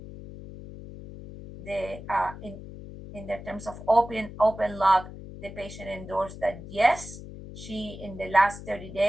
in the terms of open lock, the patient endorsed that yes, she in the last 30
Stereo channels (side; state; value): left; noise; hum, 13 dB below the sound